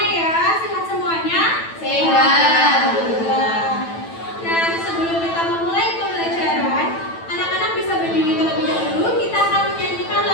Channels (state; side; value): late; right; 9.0 ms